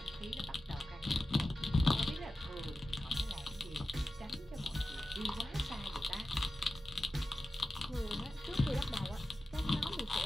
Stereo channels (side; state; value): both; normal; correlation 0.93